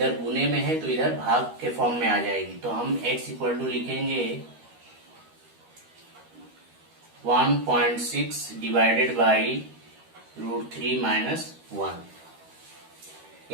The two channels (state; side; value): late; left; 13 ms